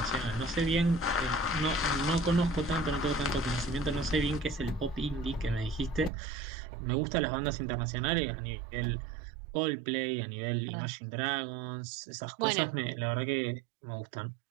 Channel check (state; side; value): drops out; left; at 6.1 s